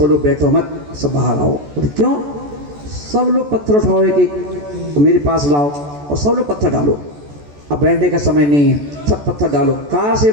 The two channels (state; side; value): late; left; 14 ms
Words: लोग बैठो मत, सब बाहर आओ। बोले क्यों? सब लोग पत्थर उठाओ एक एक, मेरे पास लाओ और सब लोग पत्थर डालो, अब बैठने का समय नहीं है, सब पत्थर डालो, कार